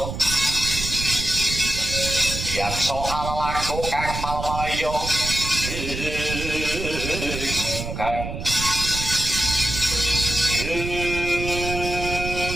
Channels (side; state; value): right; noise; rumble, 6 dB below the sound